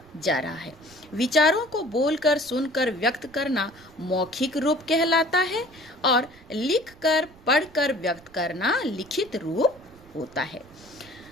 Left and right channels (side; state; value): right; noise; rumble, 24 dB below the sound